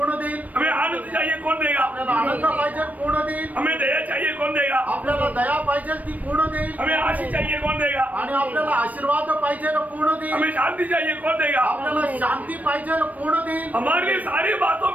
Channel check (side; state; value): left; late; 0.074 ms